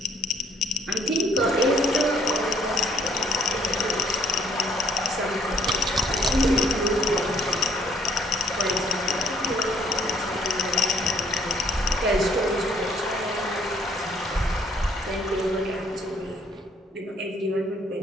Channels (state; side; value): normal; both; correlation 0.62